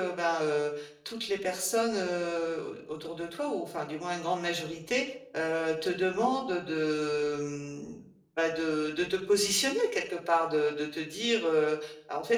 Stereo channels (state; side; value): identical; both; correlation 1.00